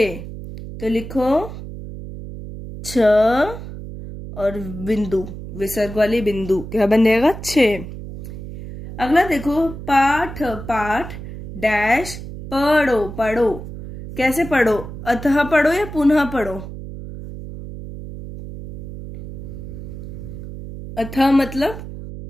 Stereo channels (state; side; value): noise; right; hum, 11 dB below the sound